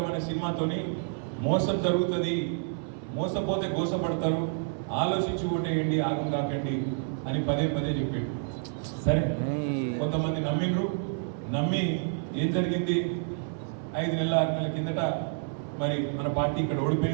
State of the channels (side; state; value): left; silent; 59 dB below the other